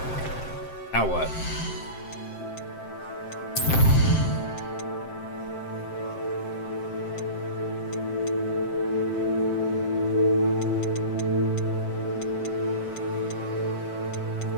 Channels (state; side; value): late; right; 7.7 ms